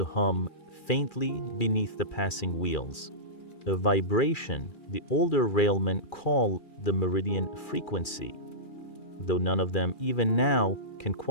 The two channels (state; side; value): late; right; 2.4 ms